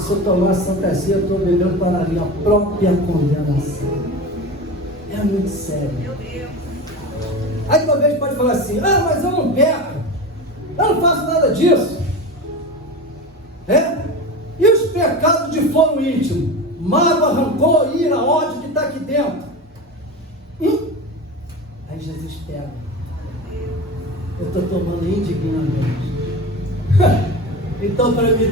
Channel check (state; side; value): normal; both; correlation 0.28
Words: eu tomar a Santa Ceia, eu estou bebendo para a minha própria condenação. É muito sério. Aí talvez pode falar assim, mas eu não peco, eu não faço nada disso. E os pecados de foro íntimo, mágoa, rancor, ira, ódio que está aqui dentro. Aí Jesus pega. Eu estou tomando indignamente. Então, para me